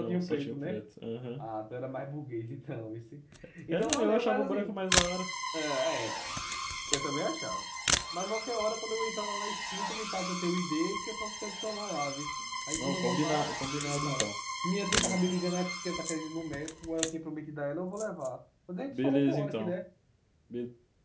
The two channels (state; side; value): identical; both; correlation 1.00